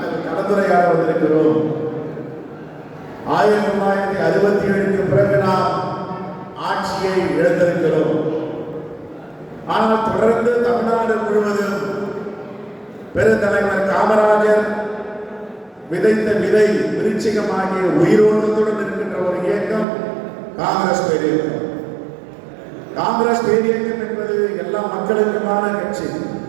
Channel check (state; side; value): drops out; left; at 19.9 s